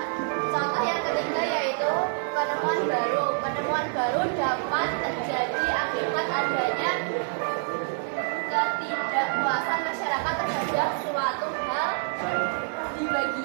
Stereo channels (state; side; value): silent; left; 60 dB below the other